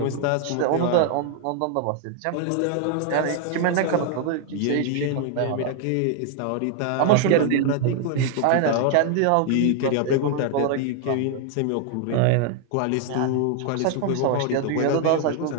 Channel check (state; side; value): different; both; correlation 0.00